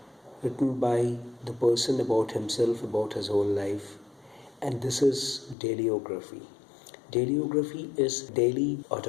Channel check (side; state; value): right; drops out; at 5.6 s